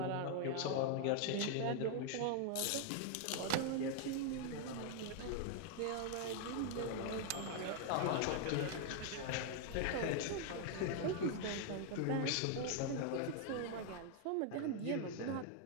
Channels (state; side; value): different; both; correlation 0.00